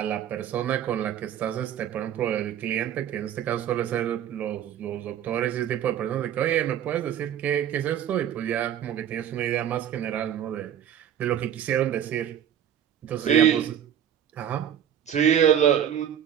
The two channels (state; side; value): quieter; left; 9.8 dB